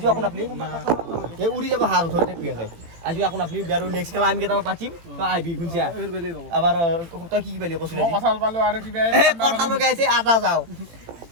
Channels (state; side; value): late; left; 18 ms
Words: আপোন আপনি এই উৰি যাব হাত ধৰি থাকি আছে আজি আপোন আপনি আৰু নেক্সট খেলা আমি কেইটা পাতিম তো আইবি গুনছিয়া আবাৰ তই কি পালি কৈছিল কঁঠাল পালো আৰু কিবা কঁঠাল লগাইছে আটা যাও